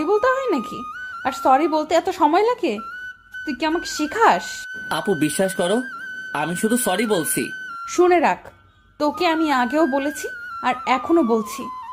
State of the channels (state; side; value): identical; both; correlation 1.00